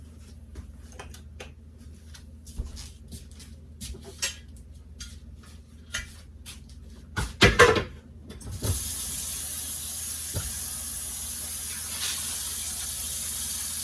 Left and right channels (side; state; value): both; identical; correlation 1.00